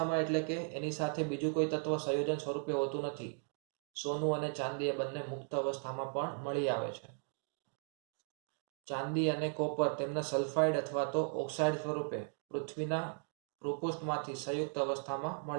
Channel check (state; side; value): silent; left; 53 dB below the other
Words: એટલે કે એની સાથે બીજું કોઈ તત્વ સંયોજન સ્વરૂપે હોતું નથી. સોનું અને ચાંદી એ બંને મુક્ત અવસ્થામાં પણ મળી આવે છે. ચાંદી અને કોપર તેમના સલ્ફાઇડ અથવા તો ઓક્સાઇડ સ્વરૂપે પૃથ્વીના ભૂપૃષ્ઠમાંથી સંયુક્ત અવસ્થામાં